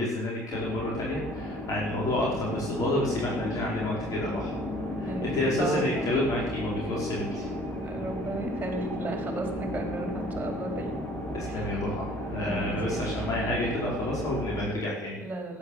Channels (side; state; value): both; normal; correlation 0.53